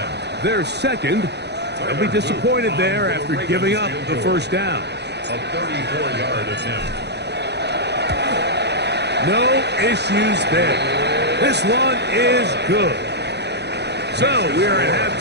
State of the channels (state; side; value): late; left; 0.49 ms